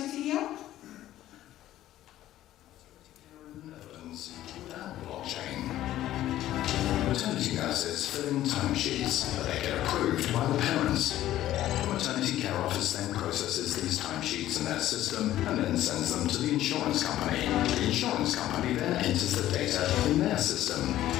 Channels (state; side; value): quieter; right; 13.6 dB